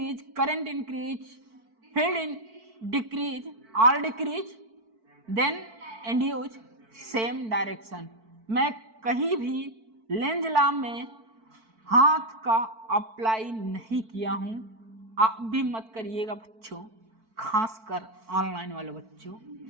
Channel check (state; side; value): late; left; 4.5 ms